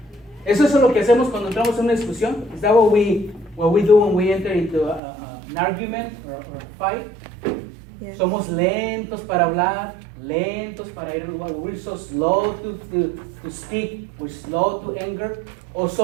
Eso es lo que hacemos cuando entramos en una discusión. Is that what we do when we enter into an argument or a fight? Yes. Somos lentos para hablar, lentos para ir. We're so slow to speak, we're slow to anger. O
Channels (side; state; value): left; drops out; at 5.0 s